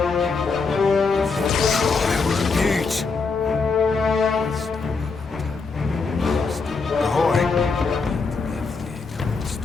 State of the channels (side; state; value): right; quieter; 4.5 dB